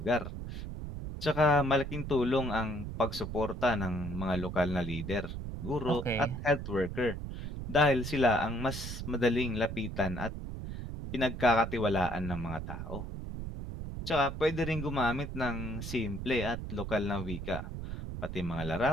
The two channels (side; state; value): right; noise; rumble, 7 dB below the sound